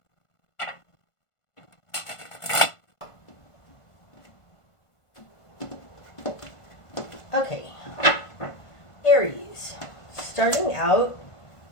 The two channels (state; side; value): late; right; 1.5 ms